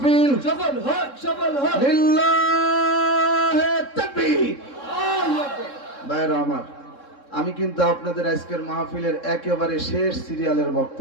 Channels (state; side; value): late; right; 3.7 ms